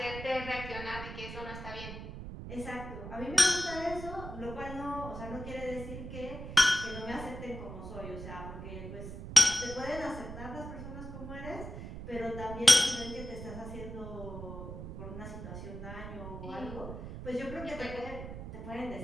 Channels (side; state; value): right; noise; rumble, 9 dB below the sound